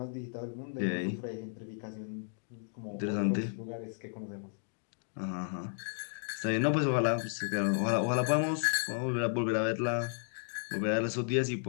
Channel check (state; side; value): silent; right; digital silence